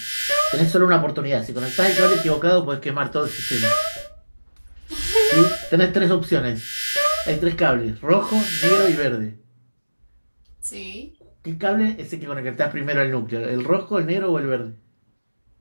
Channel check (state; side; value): inverted; both; correlation -1.00